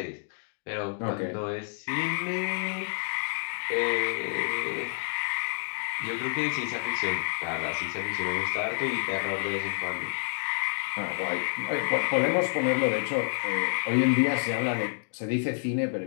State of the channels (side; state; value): right; silent; digital silence